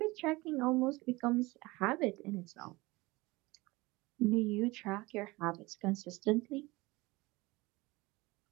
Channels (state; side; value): quieter; left; 22.1 dB